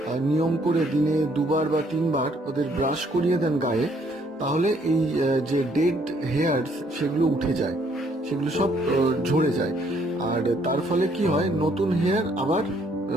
নিয়ম করে দিনে 2বার বা 3বার ওদের ব্রাশ করিয়ে দেন গায়ে, তাহলে এই যে ডেড হেয়ারস সেগুলো উঠে যায়, সেগুলো সব ঝরে যায়। আর তার ফলে কি হয়, নতুন হেয়ার আবার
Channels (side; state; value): both; normal; correlation 0.66